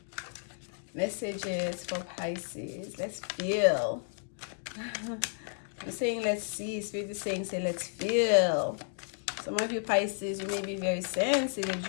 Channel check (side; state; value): right; silent; digital silence